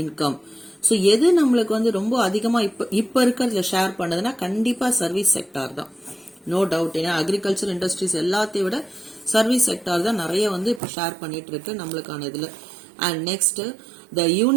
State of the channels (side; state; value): left; drops out; at 10.8 s